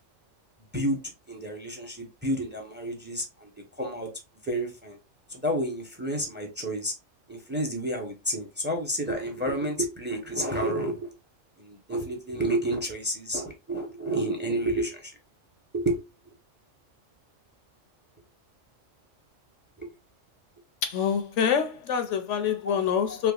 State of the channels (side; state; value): both; normal; correlation -0.06